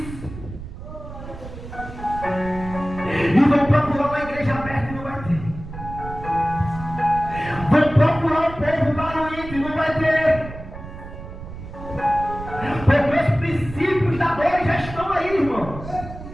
E vão procurar uma igreja aberta e não vai ter. Vão procurar um povo barulhento e não vai ter. Porque os princípios da dor já estão aí, irmão.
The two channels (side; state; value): right; noise; rumble, 12 dB below the sound